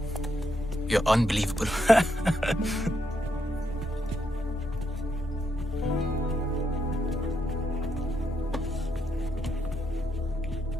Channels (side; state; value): both; normal; correlation 0.79